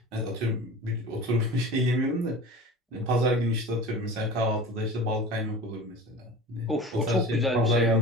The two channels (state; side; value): normal; both; correlation 0.36